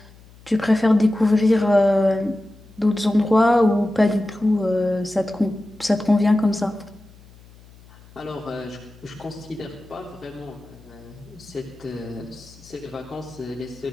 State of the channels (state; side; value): noise; left; hum, 24 dB below the sound